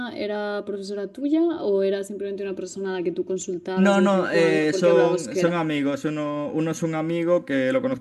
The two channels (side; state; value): both; identical; correlation 1.00